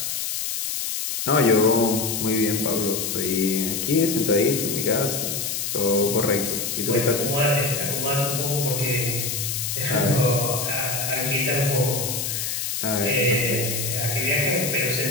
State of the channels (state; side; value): noise; left; hiss, 2 dB below the sound